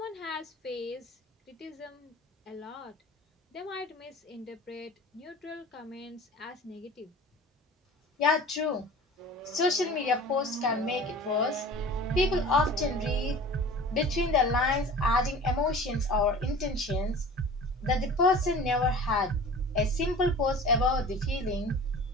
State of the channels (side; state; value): both; normal; correlation 0.40